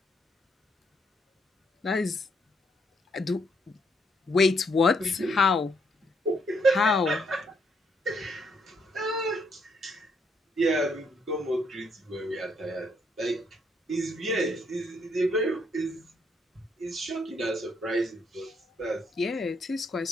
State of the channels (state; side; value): normal; both; correlation 0.73